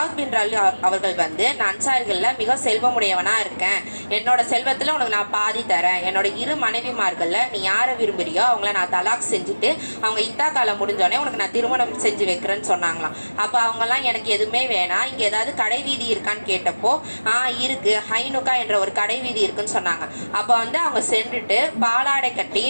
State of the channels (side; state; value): both; inverted; correlation -1.00